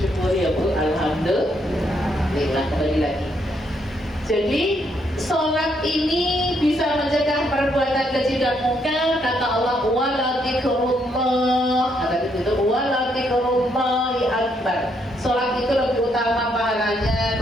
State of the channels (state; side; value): normal; both; correlation 0.74